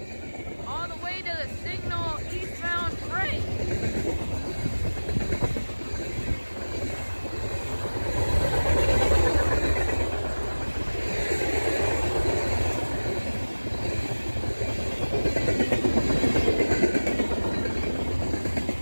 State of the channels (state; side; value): inverted; both; correlation -1.00